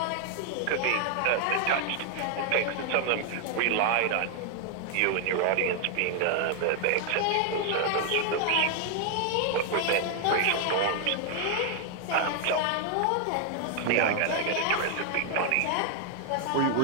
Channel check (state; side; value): different; both; correlation 0.00